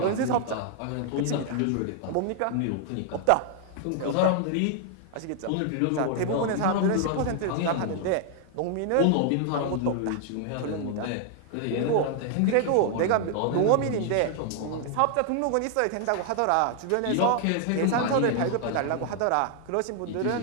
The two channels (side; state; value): both; different; correlation 0.00